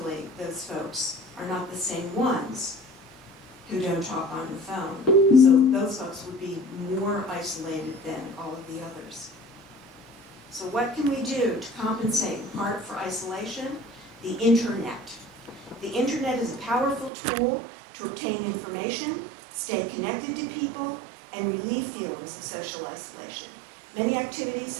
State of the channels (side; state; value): left; drops out; at 17.1 s